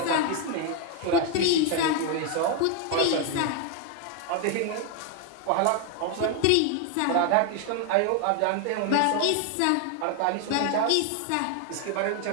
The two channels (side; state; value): both; different; correlation 0.01